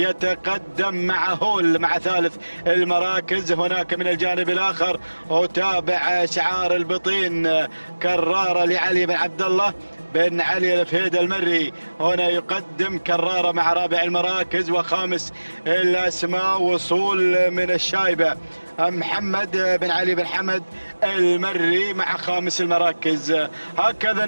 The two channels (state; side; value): inverted; both; correlation -1.00